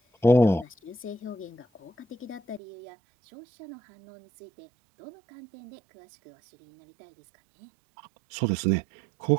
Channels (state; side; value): drops out; left; at 2.6 s